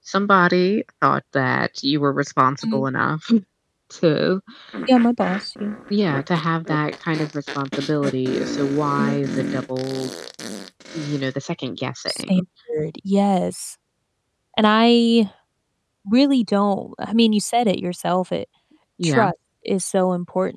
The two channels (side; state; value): both; identical; correlation 1.00